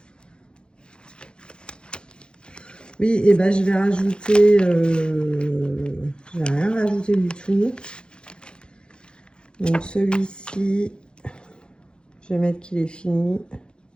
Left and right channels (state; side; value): late; right; 0.051 ms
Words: Oui, et ben je vais rajouter. Je vais rien rajouter du tout. Donc celui-ci, je vais mettre qu'il est fini